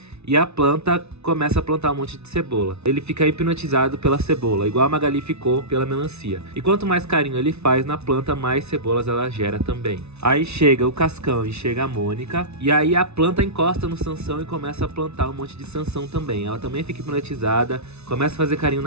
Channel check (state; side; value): late; left; 0.80 ms